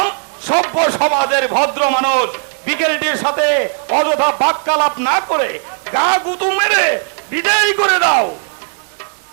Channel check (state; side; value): silent; left; 69 dB below the other